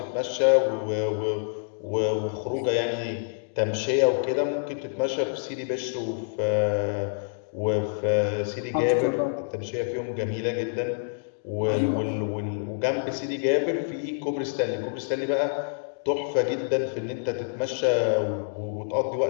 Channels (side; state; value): right; silent; digital silence